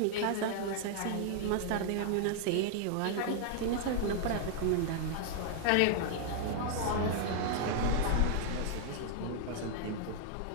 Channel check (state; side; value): different; both; correlation -0.01